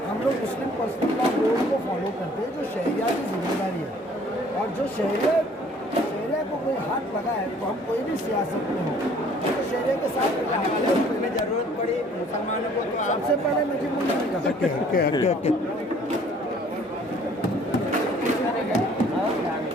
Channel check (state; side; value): normal; both; correlation 0.56